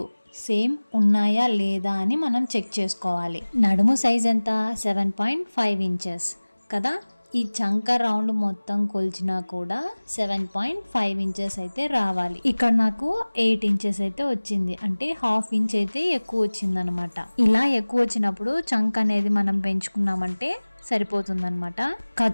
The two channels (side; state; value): both; inverted; correlation -1.00